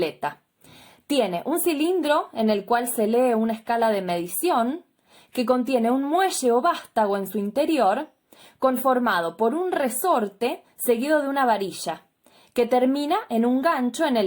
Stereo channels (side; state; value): both; identical; correlation 1.00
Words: Tiene un cilindro en el cual se lee una escala de medición que contiene un muelle o vástago en su interior, conformado por un resorte seguido de una varilla, que termina en un gancho en